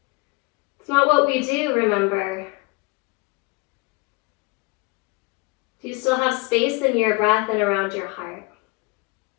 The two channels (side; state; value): right; quieter; 26.4 dB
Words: It's not what we do, remember. Do you still have space in your breath and around your heart?